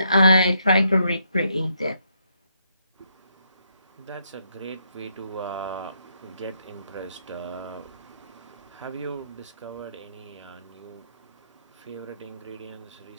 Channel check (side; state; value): both; inverted; correlation -0.76